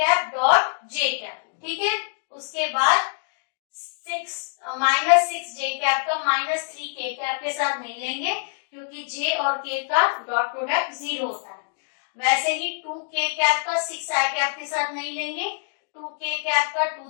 dot j cap. ठीक है, उसके बाद -6j कैप का -3k कैप के साथ नहीं लेंगे क्योंकि j और k का डॉट प्रोडक्ट 0 होता है। वैसे ही 2k कैप का 6i कैप के साथ नहीं लेंगे, 2k कैप का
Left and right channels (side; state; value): right; silent; digital silence